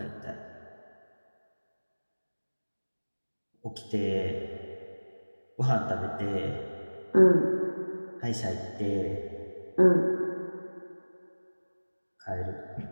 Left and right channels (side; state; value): both; inverted; correlation -1.00